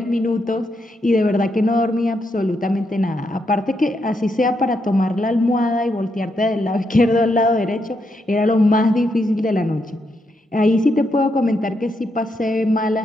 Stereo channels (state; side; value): normal; both; correlation 0.80